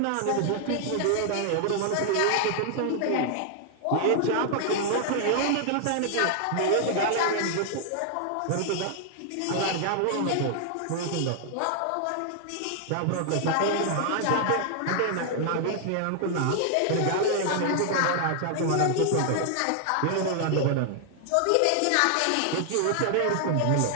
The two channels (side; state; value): both; different; correlation 0.00